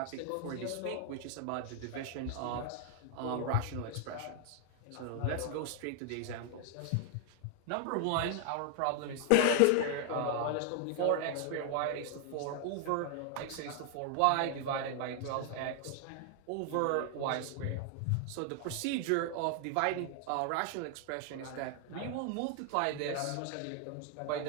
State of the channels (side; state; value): both; different; correlation 0.00